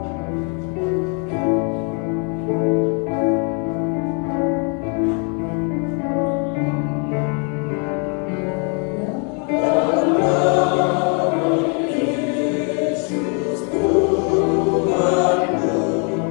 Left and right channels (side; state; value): right; quieter; 38.3 dB